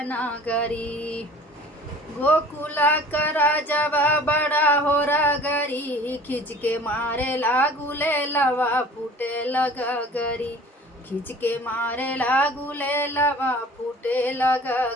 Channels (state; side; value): normal; both; correlation 0.46